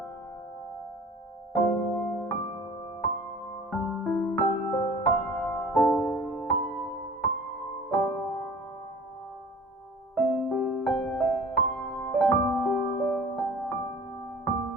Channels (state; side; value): normal; both; correlation 0.45